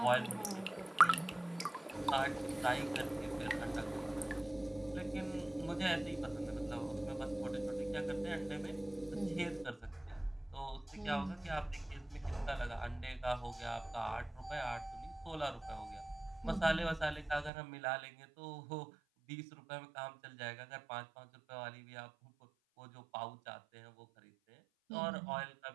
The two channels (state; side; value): drops out; left; at 17.5 s